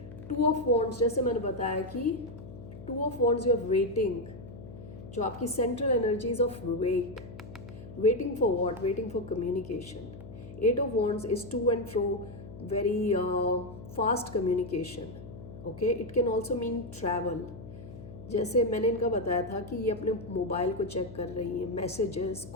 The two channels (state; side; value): noise; left; hum, 14 dB below the sound